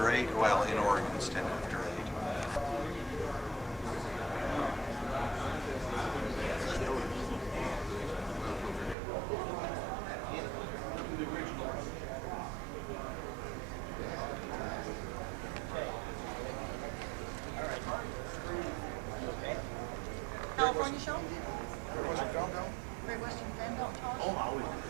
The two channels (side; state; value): left; drops out; at 9.0 s